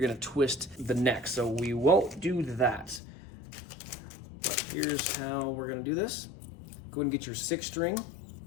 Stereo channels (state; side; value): drops out; right; at 3.0 s